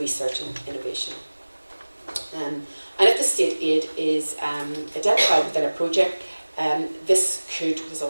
and Innovation. And if the state aid is identified within a project, this could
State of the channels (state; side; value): inverted; both; correlation -1.00